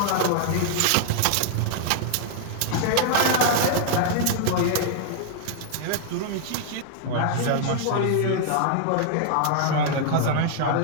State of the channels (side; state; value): both; different; correlation -0.01